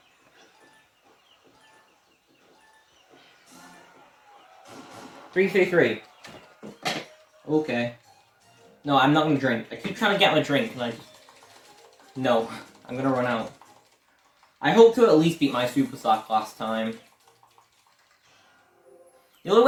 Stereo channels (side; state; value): both; identical; correlation 1.00